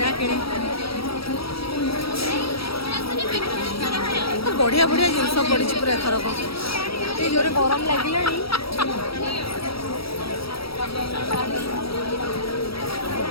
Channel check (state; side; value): late; right; 0.75 ms